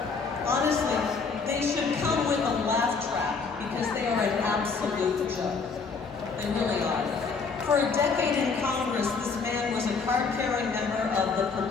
Honestly, they should come with a laugh track because they are an absolute joke. They really are. For a decade in Congress, this man was a card-carrying member of the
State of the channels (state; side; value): quieter; right; 4.9 dB